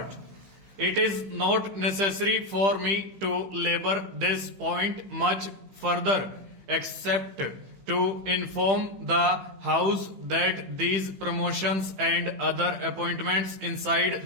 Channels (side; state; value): left; late; 15 ms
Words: It is not necessary for me to labor this point much further, except to inform the House that these promotions and other appointments